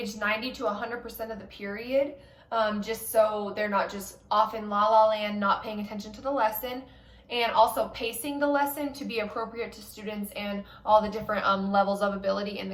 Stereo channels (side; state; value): both; identical; correlation 1.00